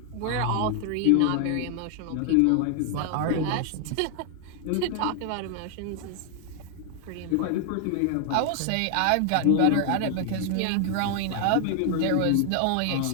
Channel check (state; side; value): different; both; correlation 0.00